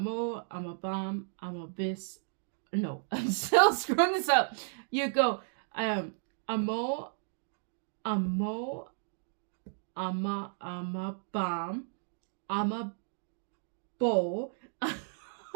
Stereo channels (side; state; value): left; silent; digital silence